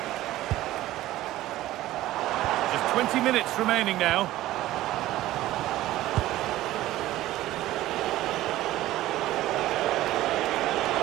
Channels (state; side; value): quieter; left; 15.5 dB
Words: Just 20 minutes remaining now.